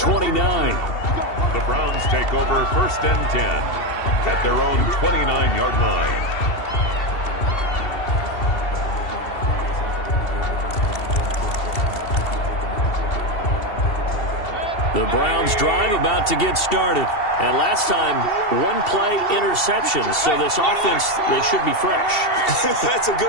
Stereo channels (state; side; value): late; right; 2.7 ms